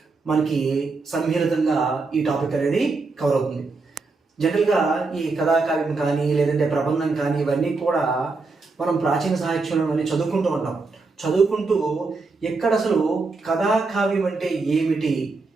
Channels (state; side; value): quieter; left; 3.9 dB